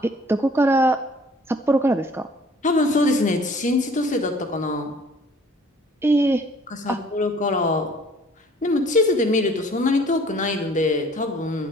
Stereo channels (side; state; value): both; normal; correlation 0.55